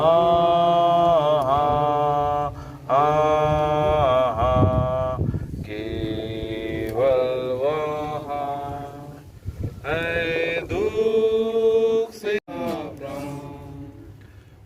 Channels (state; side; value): identical; both; correlation 1.00